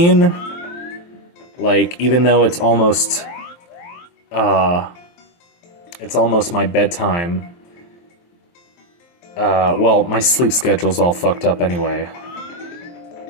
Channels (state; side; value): late; right; 23 ms